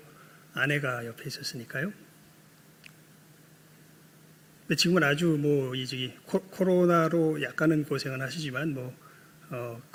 아내가 옆에 있었으니까요. 근데 지금은 아주 코로나로 약간은 고생은 하시지만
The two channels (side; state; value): both; identical; correlation 1.00